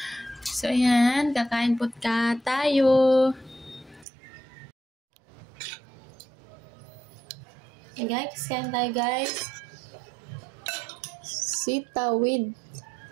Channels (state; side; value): drops out; left; at 4.0 s